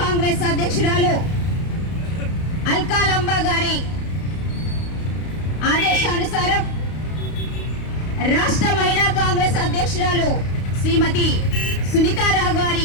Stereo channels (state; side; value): late; right; 32 ms